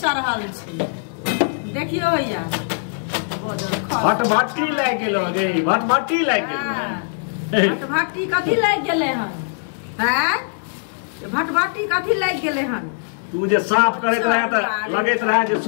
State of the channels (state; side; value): silent; right; digital silence